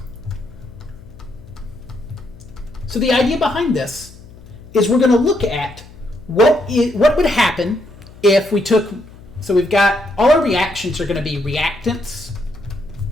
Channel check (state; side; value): noise; left; hum, 20 dB below the sound